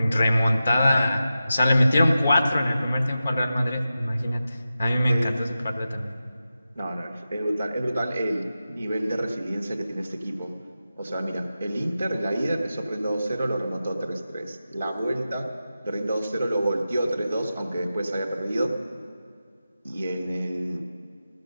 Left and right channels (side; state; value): both; inverted; correlation -0.92